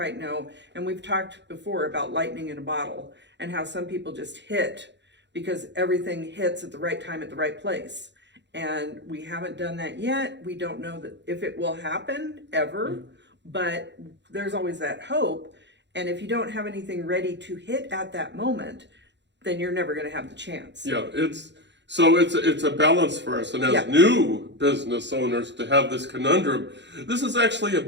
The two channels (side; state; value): left; late; 0.52 ms